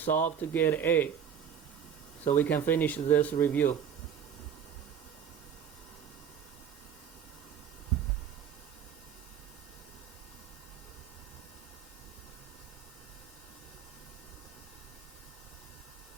to get A, so we can finish this review.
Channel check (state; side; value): quieter; left; 8.2 dB